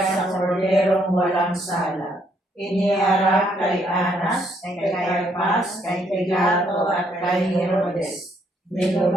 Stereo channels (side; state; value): both; normal; correlation 0.71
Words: korderong walang sala. Iniharap kay Anas, kay Caiaphas, kay Pilato at kay Herodes.